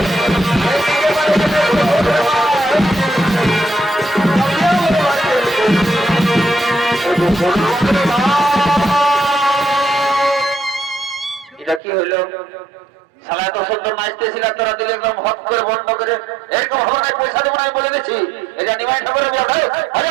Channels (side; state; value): left; drops out; at 11.8 s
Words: এটা কি হলো শালা এত সুন্দর নাচতেছিল তোরা দিলে একদম হট করে বন্ধ করে এরকম হবে না পয়সা দেবো না বলে দিচ্ছি এটা নিমাই ঠাকুরের ব্যবসায়